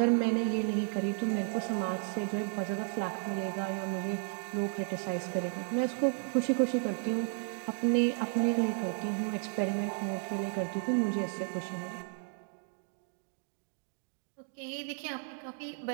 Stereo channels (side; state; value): left; silent; 55 dB below the other